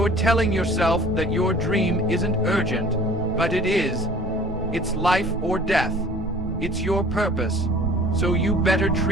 telling yourself that your dream isn't urgent, but it is. It's life or death. It's your purpose, so you better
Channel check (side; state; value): both; normal; correlation 0.48